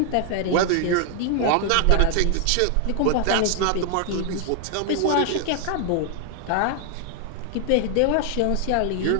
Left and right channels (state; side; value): different; both; correlation 0.00